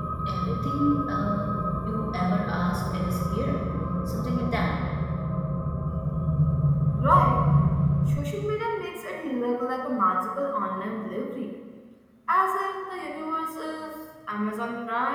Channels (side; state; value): both; identical; correlation 1.00